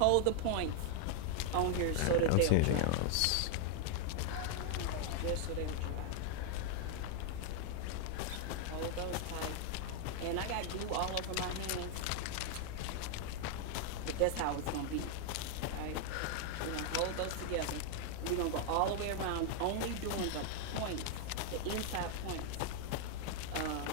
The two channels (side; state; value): both; different; correlation 0.00